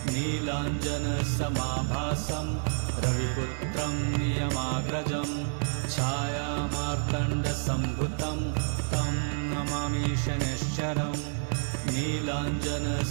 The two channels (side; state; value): left; silent; 58 dB below the other